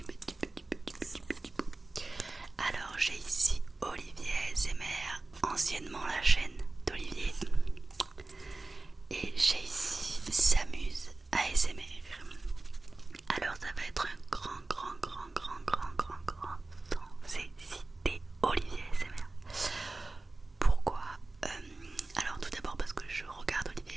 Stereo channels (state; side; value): quieter; left; 3.2 dB